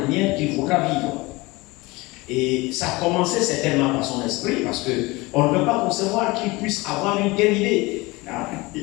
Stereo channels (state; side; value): quieter; right; 22.9 dB